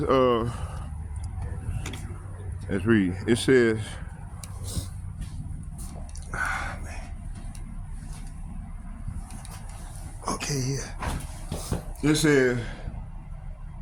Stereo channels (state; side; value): identical; both; correlation 1.00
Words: let's read. It says okay, yeah. It says,